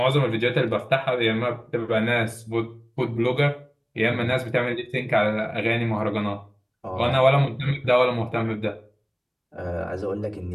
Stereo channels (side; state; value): both; identical; correlation 1.00